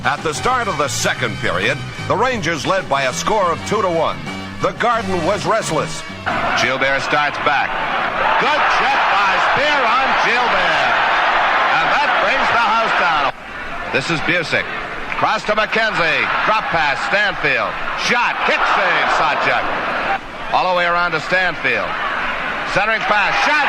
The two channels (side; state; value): both; identical; correlation 1.00